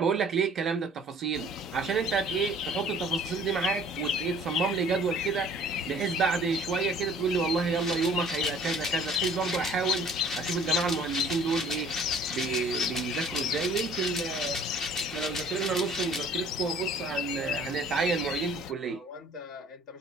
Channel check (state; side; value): normal; both; correlation 0.53